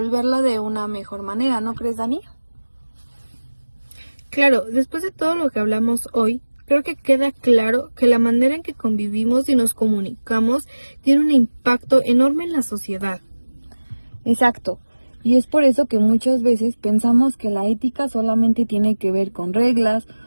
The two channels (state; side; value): inverted; both; correlation -1.00